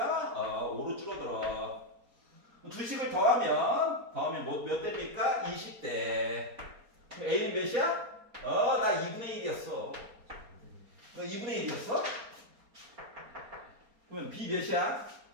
5로 줄어들어. 두식을 더하면 몇 대입니까? 20대. 그럼 A는 몇이야? 나 2분의 1이었어. 너 2분의 1이었어? 그러면 B 몇이야?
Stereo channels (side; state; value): left; late; 4.3 ms